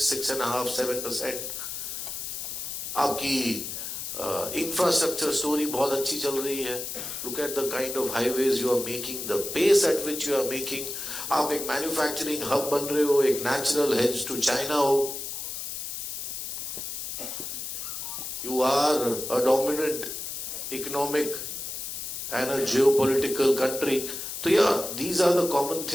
7%। आपकी इंफ्रास्ट्रक्चर स्टोरी बहुत अच्छी चल रही है। Look at the kind of highways you are making, the pace at which you are making. आप एक मैन्युफैक्चरिंग हब बन रहे हो, एक नेचुरल हेज टू चाइना हो। You are a dominant economic and a geopolitical country. So yeah, these are the common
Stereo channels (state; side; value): noise; left; hiss, 6 dB below the sound